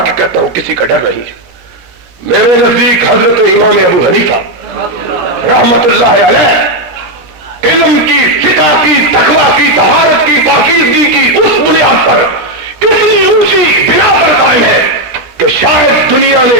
کہتا ہوں کسی کا ڈر نہیں ہے۔ میرے نزدیک حضرت امام ابو حنیفہ رحمت اللہ علیہ علم کی، فقہ کی، تقویٰ کی، طہارت کی، پاکیزگی کی اس بنیاد پر اتنی اونچی بنا پر قائم ہے کہ شاید دنیا نے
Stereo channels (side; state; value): left; late; 17 ms